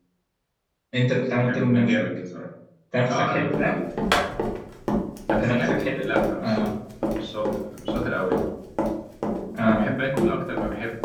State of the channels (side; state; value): both; identical; correlation 1.00